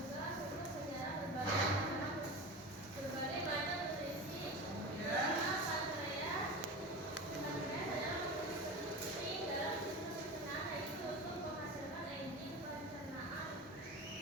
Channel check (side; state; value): both; normal; correlation 0.28